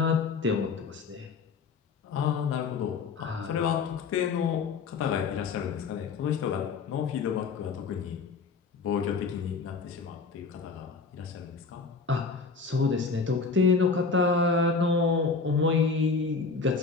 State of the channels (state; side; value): quieter; right; 4.7 dB